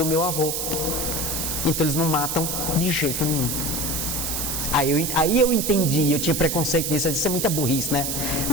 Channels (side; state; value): right; noise; hiss, 2 dB below the sound